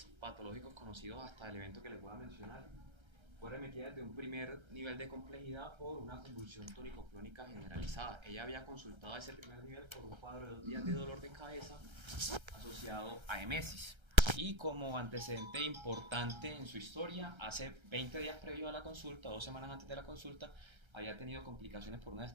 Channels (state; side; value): late; left; 1.3 ms